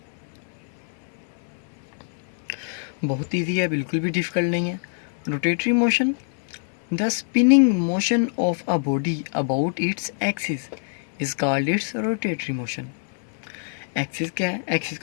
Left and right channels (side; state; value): right; silent; 61 dB below the other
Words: बहुत ईजी है, बिल्कुल भी डिफिकल्ट नहीं है। Rotatory motion, the spinning motion of a body about its axis is called its rotatory motion. Axis क्या है? एक्सिस